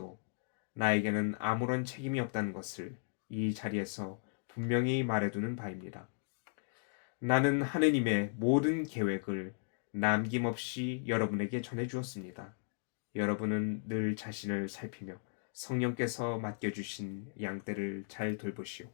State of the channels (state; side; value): silent; right; digital silence